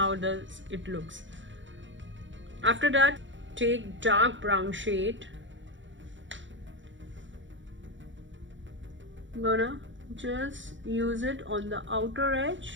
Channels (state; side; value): late; left; 0.55 ms